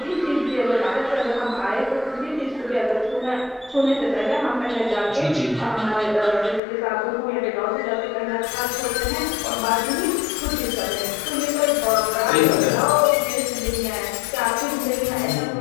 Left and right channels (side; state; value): right; drops out; at 6.6 s